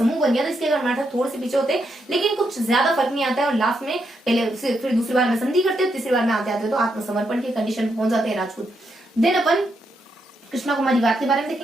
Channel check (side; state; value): both; normal; correlation 0.80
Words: बन गया था, इसके अगर मराठा थोड़े से पीछे होते, लेकिन कुछ ज्यादा फर्क नहीं आता है। और लास्ट में फिर दूसरी बार में संधि करते हो, तीसरी बार में आते तो आत्मसमर्पण की कंडीशन में पहुंच जाते हैं राजपूत। देन अपन कृष्णा कुमारी वाद के बारे में